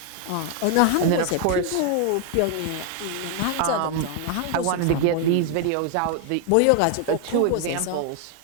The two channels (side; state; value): both; different; correlation 0.00